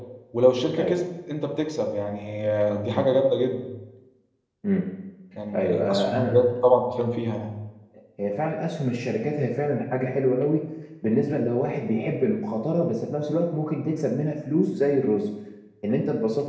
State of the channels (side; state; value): both; identical; correlation 1.00